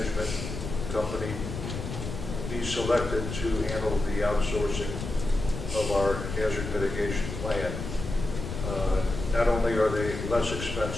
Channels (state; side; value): noise; left; rumble, 6 dB below the sound